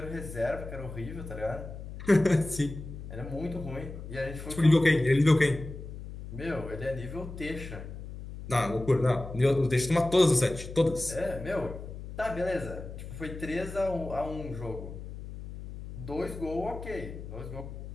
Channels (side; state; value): left; noise; hum, 11 dB below the sound